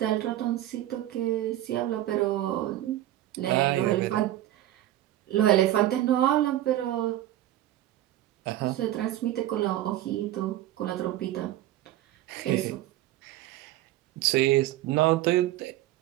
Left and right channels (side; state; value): left; quieter; 14.2 dB